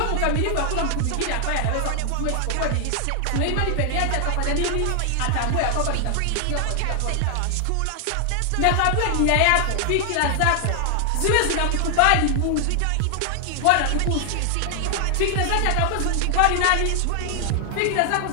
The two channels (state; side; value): different; both; correlation 0.00